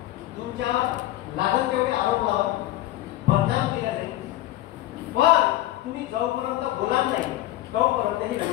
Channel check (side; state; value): right; quieter; 15.3 dB